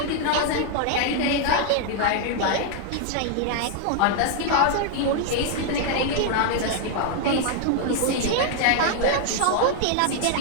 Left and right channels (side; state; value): both; different; correlation 0.00